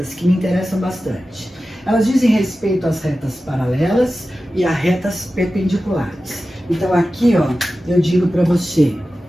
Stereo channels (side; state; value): both; normal; correlation 0.94